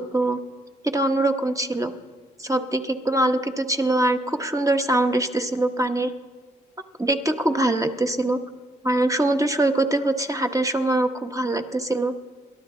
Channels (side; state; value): both; normal; correlation 0.72